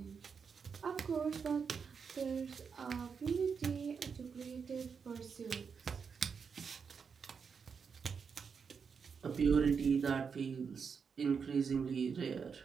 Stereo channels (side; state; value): left; quieter; 6.1 dB